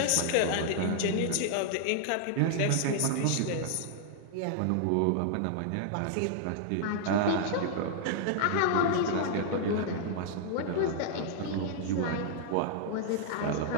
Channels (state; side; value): different; both; correlation 0.00